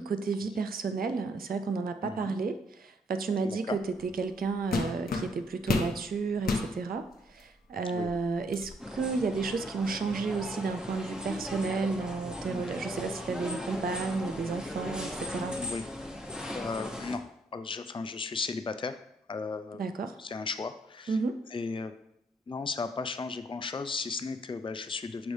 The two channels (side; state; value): both; normal; correlation 0.69